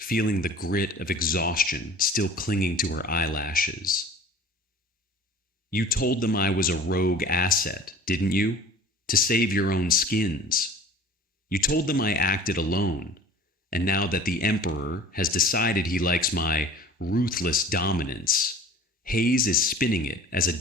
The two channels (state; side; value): normal; both; correlation 0.44